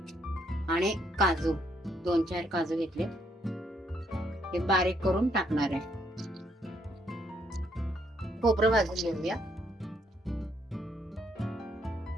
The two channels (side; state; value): both; normal; correlation 0.72